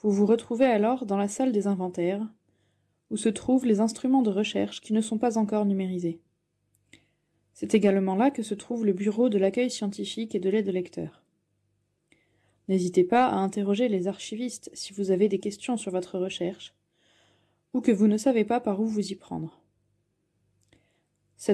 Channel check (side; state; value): both; identical; correlation 1.00